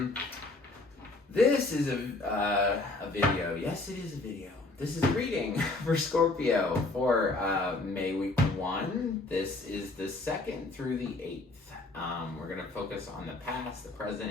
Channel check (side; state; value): right; quieter; 3.1 dB